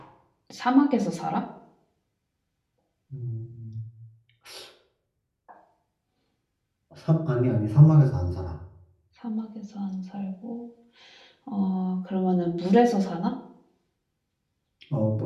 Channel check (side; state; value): both; identical; correlation 1.00